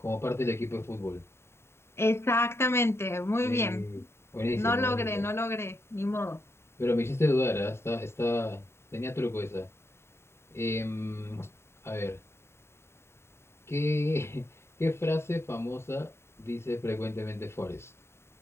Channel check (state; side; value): late; right; 0.12 ms